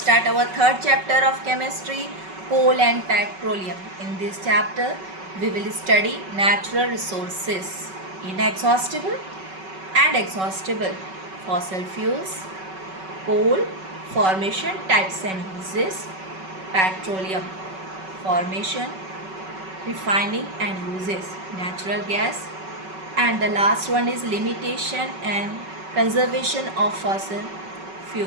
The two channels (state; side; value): late; left; 5.3 ms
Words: our third chapter of chemistry, coal and petroleum. In this chapter, we will study natural resources, inexhaustible and exhaustible, fossil fuels, coal, formation, types and uses, petroleum, formation, refining and uses, natural gas, and the last one is limitation and conservation of fossil